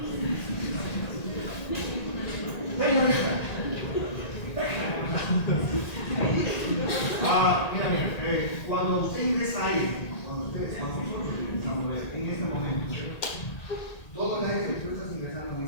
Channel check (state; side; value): late; right; 1.9 ms